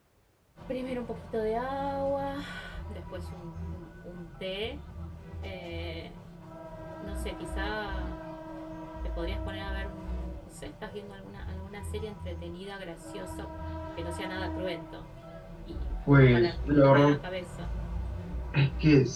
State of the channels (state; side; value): identical; both; correlation 1.00